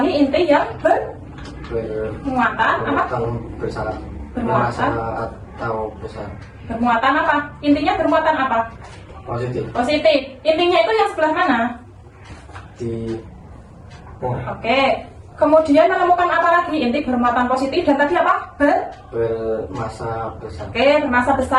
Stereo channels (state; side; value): identical; both; correlation 1.00